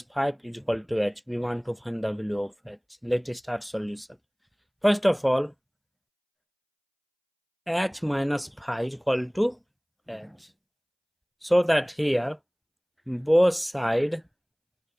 5 is equal to h. We want to find the value of h. Let's start solution. First of all, h minus 5 is equal to h. So that here both side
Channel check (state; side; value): identical; both; correlation 1.00